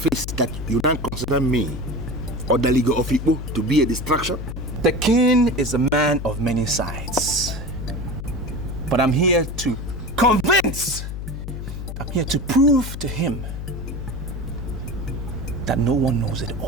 that you don't consider me or the League of Igbo to be a distraction? The king is a man of many sides. But I'm here to convince. I'm here to prove to him that no one knows it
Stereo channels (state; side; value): noise; left; hum, 7 dB below the sound